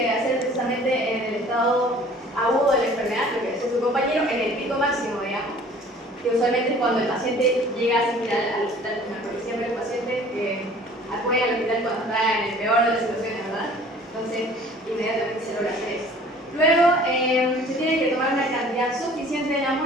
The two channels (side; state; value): both; normal; correlation 0.50